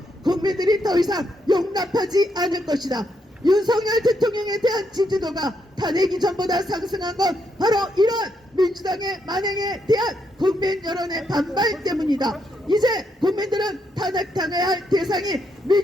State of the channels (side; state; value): both; normal; correlation 0.78